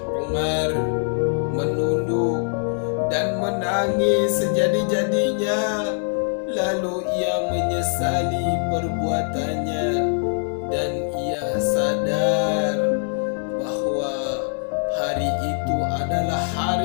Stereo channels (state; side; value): silent; right; digital silence